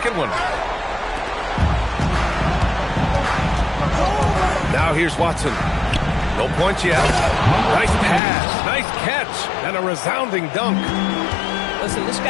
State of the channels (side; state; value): right; drops out; at 8.2 s